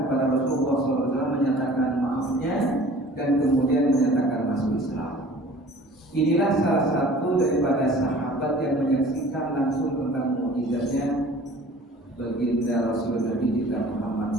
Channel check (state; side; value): normal; both; correlation 0.47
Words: kepada Rasulullah SAW menyatakan maafnya dan kemudian menyatakan masuk Islam. Inilah salah satu daripada sahabat yang menyaksikan langsung tentang mukjizatnya baginda Rasul Nabi kita Muhammad